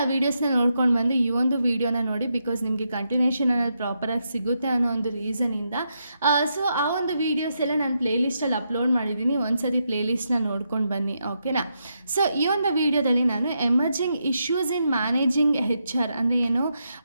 ವೀಡಿಯೋಸ್ನ ನೋಡ್ಕೊಂಡು ಬಂದು ಈ ಒಂದು ವೀಡಿಯೋನ ನೋಡಿ, ಬಿಕಾಸ್ ನಿಮಗೆ ಕಂಟಿನ್ಯೂಷನ್ ಅನ್ನೋದು ಪ್ರಾಪರಾಗಿ ಸಿಗುತ್ತೆ ಅನ್ನೋ ಒಂದು ರೀಸನಿಂದ. ಸೊ ಆ ಒಂದು ವೀಡಿಯೋಸ್ ಎಲ್ಲ ನಾನು ಪ್ಲೇಲಿಸ್ಟಲ್ಲಿ ಅಪ್ಲೋಡ್ ಮಾಡಿದ್ದೀನಿ, ಒಂದ್ಸತಿ ಪ್ಲೇಲಿಸ್ಟ್ನ ನೋಡ್ಕೊಂಡು ಬನ್ನಿ, ಓಕೆನಾ. ಸೊ ಈ ಒಂದು ವೀಡಿಯೋದಲ್ಲಿ ನಾನು ಎಮರ್ಜಿಂಗ್ ಇಶ್ಯೂಸ್ ಇನ್ ಮ್ಯಾನೇಜಿಂಗ್ HR ಅಂದರೆ ಏನು,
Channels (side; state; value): both; inverted; correlation -0.82